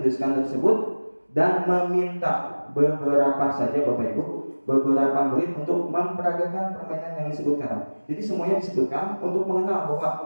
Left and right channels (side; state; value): both; inverted; correlation -1.00